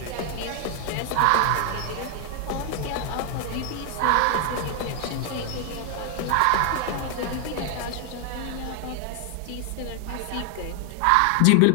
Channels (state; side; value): different; both; correlation 0.00